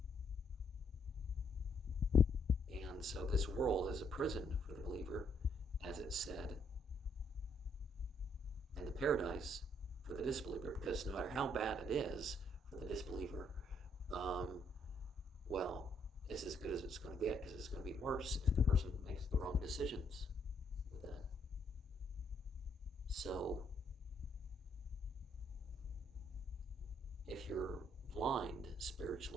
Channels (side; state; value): both; normal; correlation 0.71